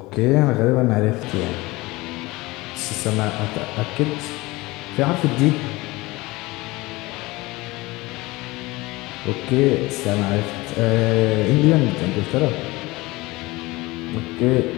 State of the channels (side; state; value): right; quieter; 21.4 dB